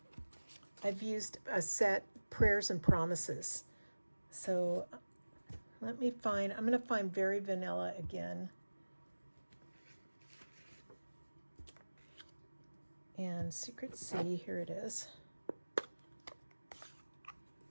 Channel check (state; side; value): inverted; both; correlation -1.00